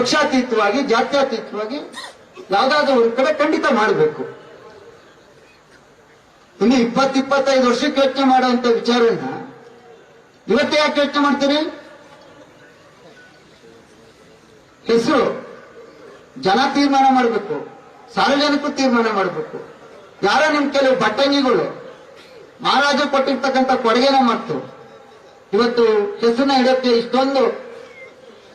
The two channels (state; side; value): identical; both; correlation 1.00